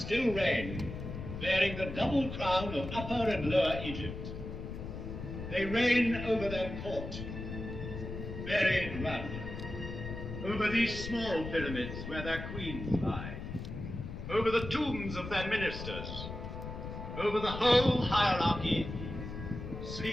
reign, bearing the double crown of Upper and Lower Egypt. They reign over their court, buried run, over these small pyramids where their queens lie, over the tombs of their ministers, over the whole hierarchy,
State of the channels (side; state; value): left; noise; rumble, 8 dB below the sound